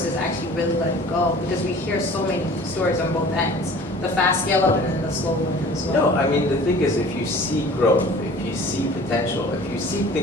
actually really let it go, because we hear so many stories on both ends. The fast scale up and then the slow one as well. No, I mean, the thing is, if you see growth, if you see potential, if you see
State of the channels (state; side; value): normal; both; correlation 0.46